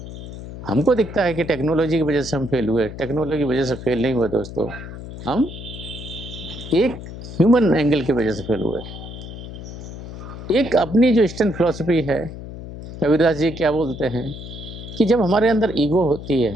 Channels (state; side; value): noise; left; hum, 11 dB below the sound